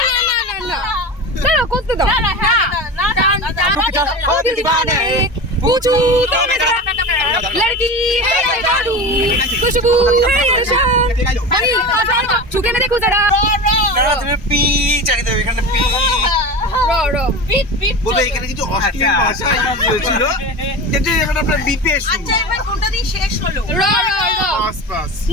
না না না না, দাঁড়া করতে দাও। पूछू तो मैं लड़की है या जादू, खुशबू है या शाम, हनी छुके ना देखो जरा। না তুমি পি চালিয়ে দেবে এখানে পি। रो रो বলবে এখানে কিছু অশ্লীল ভাষা ছিল কিন্তু এখন আপনার বিপিএস আচ্ছা এবার কোনটা দিয়ে শেষ হলো रो रो रो। পাস পাস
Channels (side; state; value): both; normal; correlation 0.28